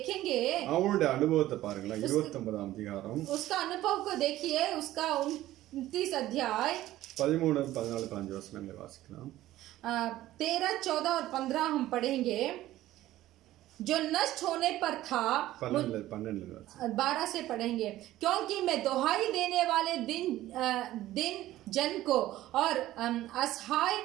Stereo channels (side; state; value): left; quieter; 14.9 dB